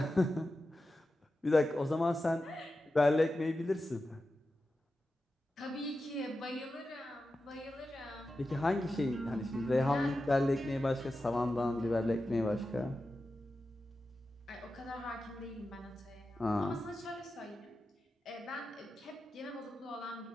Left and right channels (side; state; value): both; normal; correlation 0.92